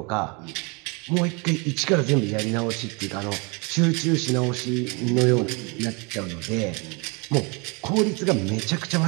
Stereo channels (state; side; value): quieter; left; 30.4 dB